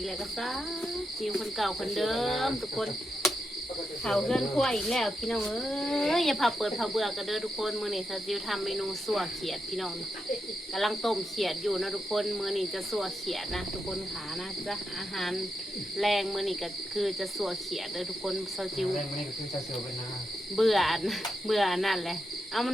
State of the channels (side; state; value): both; normal; correlation 0.85